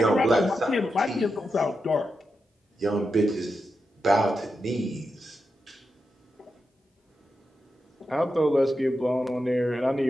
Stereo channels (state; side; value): normal; both; correlation 0.88